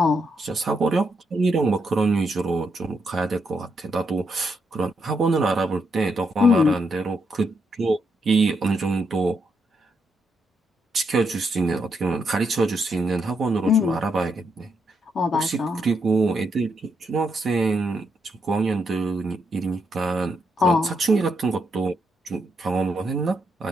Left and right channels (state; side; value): normal; both; correlation 0.79